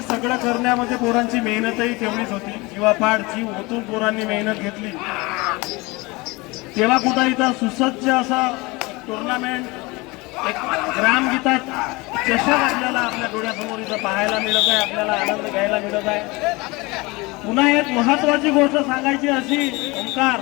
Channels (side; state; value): right; quieter; 24.2 dB